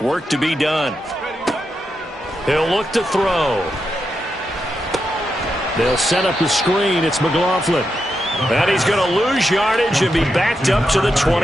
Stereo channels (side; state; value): both; normal; correlation 0.86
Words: Work to be done. He'll look to throw. They'll set up the screen. It's McLaughlin. And he's going to lose yardage and be backed up to the